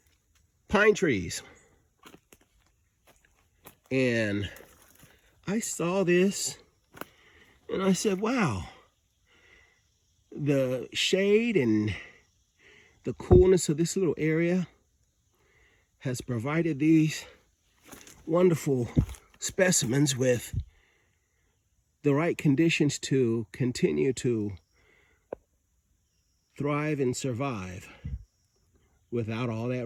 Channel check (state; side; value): identical; both; correlation 1.00